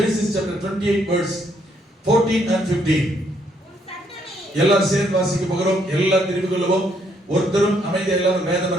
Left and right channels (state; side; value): normal; both; correlation 0.71